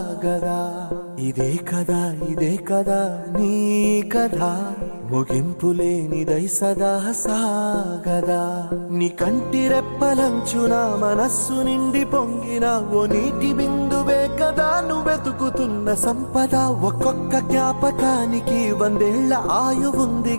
ఇదే కదా నీ కథ ముగింపులేనిదై సదా సాగదా. నీ కంటి రెప్పలంచున మనస్సు నిండి పొంగిన ఓ నీటి బిందువే కదా నువ్వెతుకుతున్న సంపద. ఒక్కొక్క జ్ఞాపకానికి 100 ఏళ్ల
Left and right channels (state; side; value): inverted; both; correlation -1.00